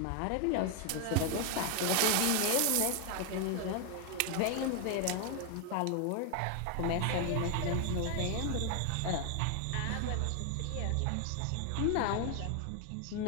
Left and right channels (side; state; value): both; different; correlation 0.00